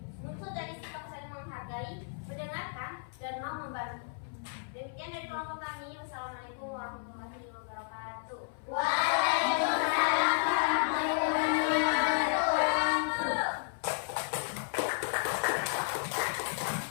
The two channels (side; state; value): right; silent; 56 dB below the other